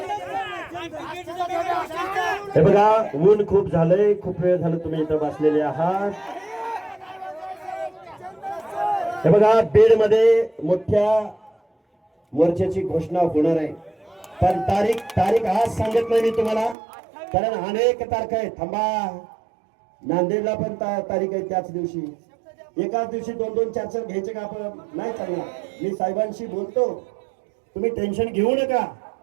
हे बघा ऊन खूप झालंय, खूप वेळ झालं तुम्ही इथं बसलेले आहात. हे बघा बीड मध्ये मोठ्या मोर्चाची घोषणा होणार आहे, पण तारीख आज सांगत नाही मी तुम्हाला, कारण अनेक तारखा आहेत. थांबा, नांदेडला पण तारीख आहे त्याच दिवशी. एकाच दिवशी दोन दोन चार चार घ्यायचे का आपण? नाही चांगला. मी साहेबांशी बोलतो, तुम्ही टेन्शन घेऊ नका.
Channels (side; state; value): left; drops out; at 16.8 s